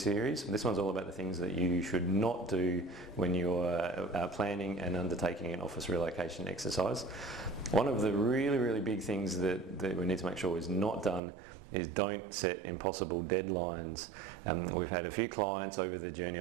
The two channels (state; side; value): drops out; left; at 11.2 s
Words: This one's all about the things that you should not do when you're planning and undertaking an office relocation exercise. One of the really big things that we need to make sure is not done is don't set impossible deadlines. We've had a few clients over the journey